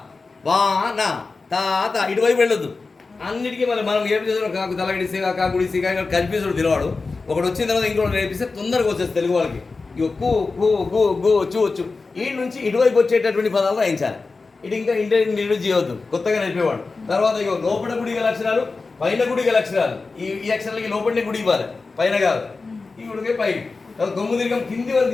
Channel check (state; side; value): quieter; right; 4.0 dB